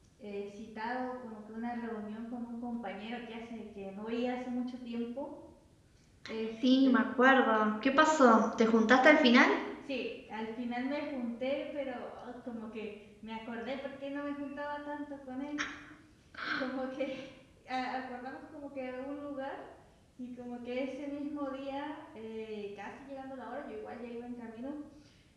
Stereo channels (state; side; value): identical; both; correlation 1.00